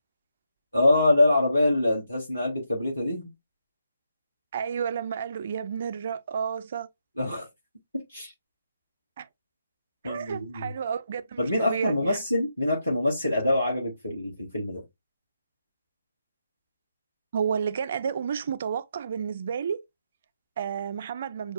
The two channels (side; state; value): both; inverted; correlation -0.81